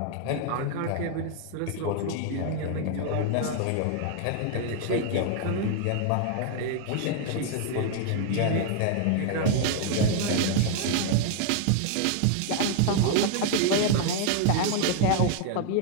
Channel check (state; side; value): different; both; correlation 0.00